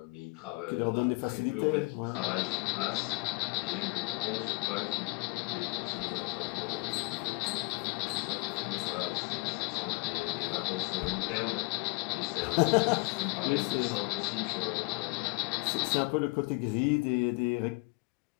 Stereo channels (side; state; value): right; quieter; 27.8 dB